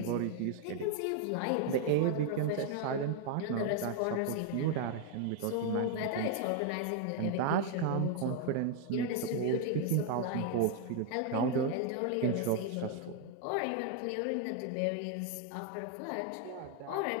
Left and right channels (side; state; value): both; different; correlation 0.00